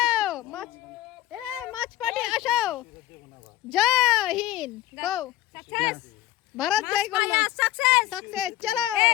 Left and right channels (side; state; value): right; quieter; 14.5 dB